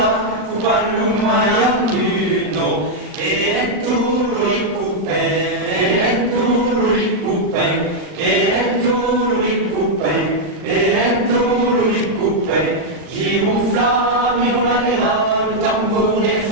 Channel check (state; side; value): late; left; 39 ms